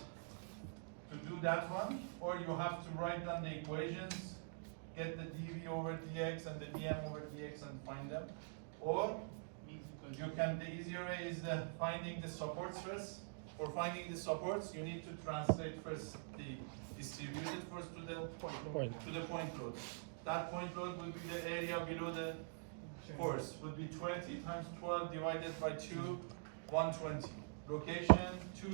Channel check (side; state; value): left; silent; digital silence